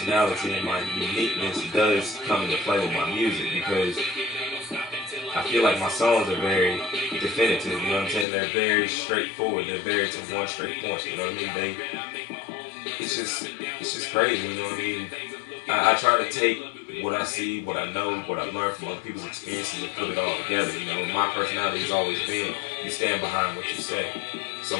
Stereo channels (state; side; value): drops out; right; at 8.2 s